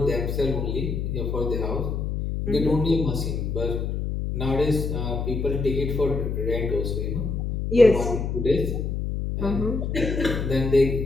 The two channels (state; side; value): noise; left; hum, 2 dB below the sound